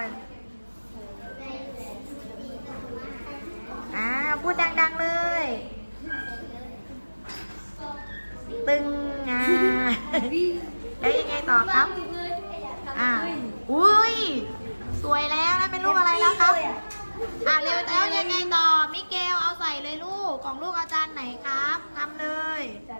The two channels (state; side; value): inverted; both; correlation -1.00